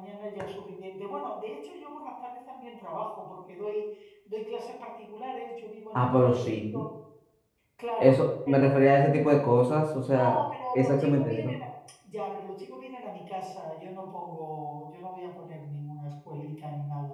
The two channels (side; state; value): both; identical; correlation 1.00